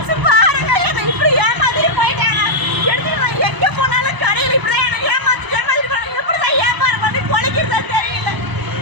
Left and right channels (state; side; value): late; left; 1.0 ms